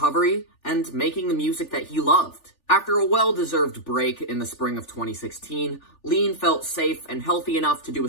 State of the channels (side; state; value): right; late; 3.4 ms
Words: and making the music that he loved. After a well-deserved break in the spring of 2016, Lean felt safe and healthy enough to do